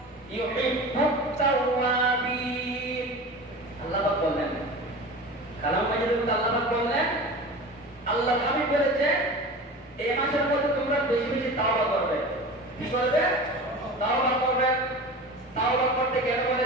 ইউহিব্বুত তাওয়াবিন। আল্লাহ পাক বলেন, কালাম মাজিদের মধ্যে আল্লাহ পাক বলেন, আল্লাহ হাবিব বলেছে এই মাসের মধ্যে তোমরা বেশি বেশি তাওবা করবে। কি করবে? তাওবা করবে। তাওবা করতে কেন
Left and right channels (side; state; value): both; normal; correlation 0.33